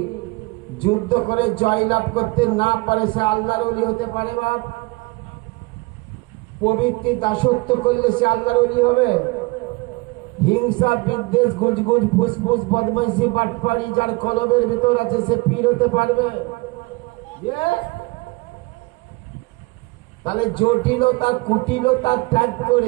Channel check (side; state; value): left; quieter; 25.1 dB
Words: যুদ্ধ করে জয়লাভ করতে না পারে সে আল্লাহর ওলি হতে পারে? বাপ, প্রবৃত্তি দাসত্ব করলে সে আল্লাহর ওলি হবে? হিংসা, বিদ্বেষ, গুজগুজ, ফুসফুস, বদমাইশি, বাটপাড়ি যার কলবের ভিতর আছে সে পীর হতে পারবে? তাহলে জটিলতা, কুটিলতা ত্যাগ